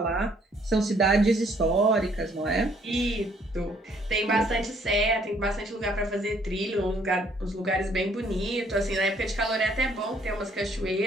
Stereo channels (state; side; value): normal; both; correlation 0.64